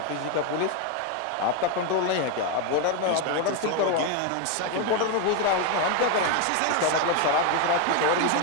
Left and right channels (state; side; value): different; both; correlation 0.01